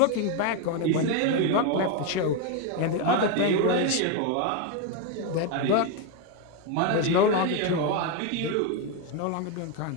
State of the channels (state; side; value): different; both; correlation 0.02